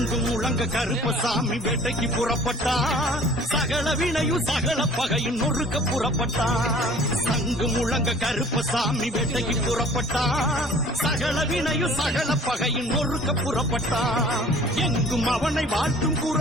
முழங்க கருப்பசாமி வேட்டைக்கு புறப்பட்டான் சகல வினையும் சகல பகையும் நொறுக்க புறப்பட்டான் சங்கு முழங்க கருப்பசாமி வேட்டைக்கு புறப்பட்டான் சகல வினையும் சகல பகையும் நொறுக்க புறப்பட்டான் எங்கும் அவனை வாழ்த்தும்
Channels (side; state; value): both; normal; correlation 0.50